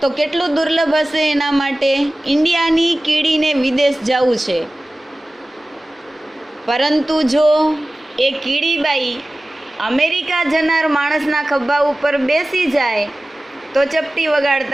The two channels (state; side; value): normal; both; correlation 0.97